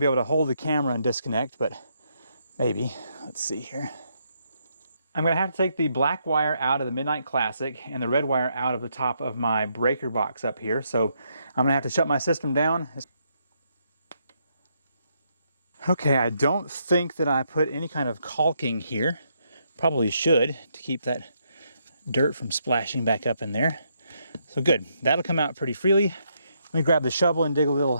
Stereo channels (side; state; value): both; inverted; correlation -0.77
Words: able to hold the camera and disconnect, but maybe. Let's see here. I'm going to have to take the black wire out of the Midnight Classic and the red wire out of the top of my breaker box up here. So I'm going to have to shut my system down. Okay, I don't think that I put any kind of caulking here. Probably should, to keep that dirt from splashing back up in there. So good, that'll come out pretty freely. Let me grab the shovel and dig a little